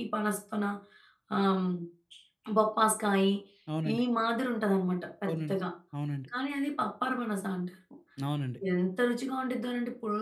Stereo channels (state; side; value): identical; both; correlation 1.00